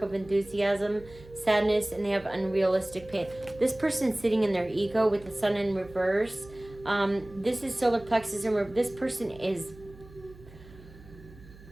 of enthusiasm, sadness, and they have unrealistic pain. This person's sitting in their ego with the Sun in reverse. This is solar plexus in reverse. This person is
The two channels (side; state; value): right; noise; hum, 20 dB below the sound